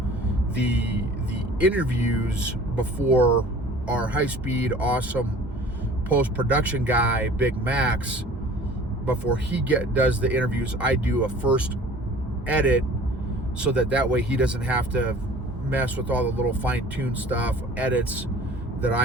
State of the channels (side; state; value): both; normal; correlation 0.47